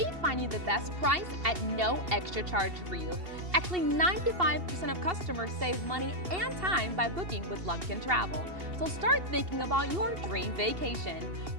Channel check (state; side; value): late; left; 2.7 ms